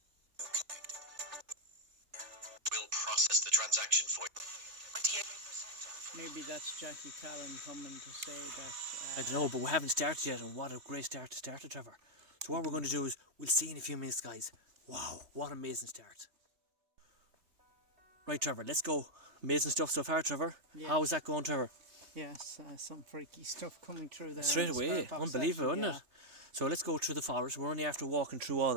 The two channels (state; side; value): late; left; 3.4 ms